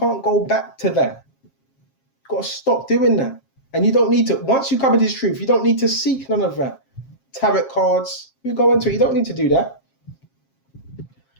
go back to that. You've got to stop doing that. And you don't need to, once you cover this truth, you don't need to seek none of that. Tarot cards, you go into it, you don't need to do that.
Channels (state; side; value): late; right; 7.4 ms